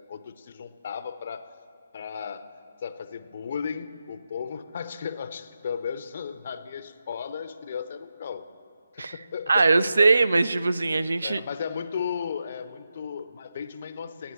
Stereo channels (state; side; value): inverted; both; correlation -0.88